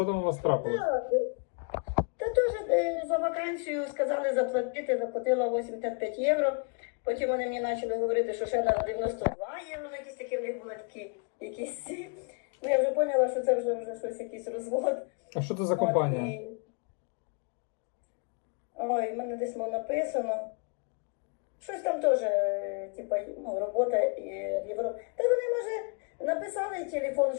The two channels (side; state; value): right; quieter; 39.4 dB